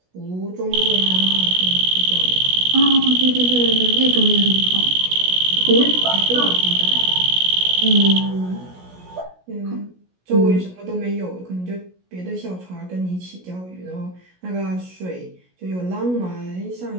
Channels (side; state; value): left; late; 16 ms